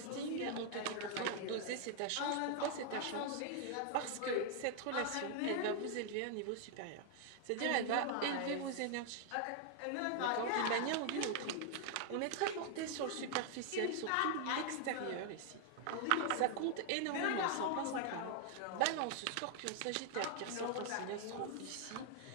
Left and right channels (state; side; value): different; both; correlation 0.00